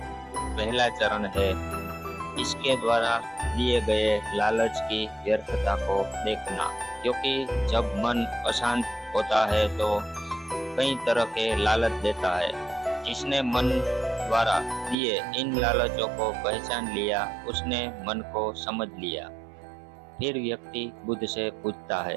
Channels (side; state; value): left; drops out; at 15.0 s